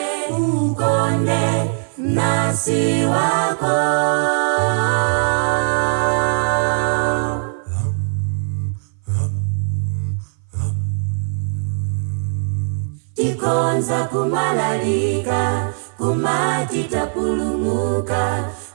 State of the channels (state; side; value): silent; left; 60 dB below the other